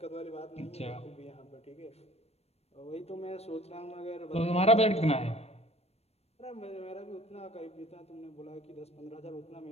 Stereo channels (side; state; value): right; late; 0.30 ms